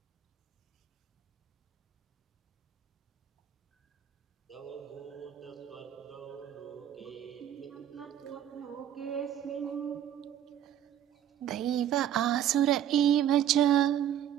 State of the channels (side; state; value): left; quieter; 10.6 dB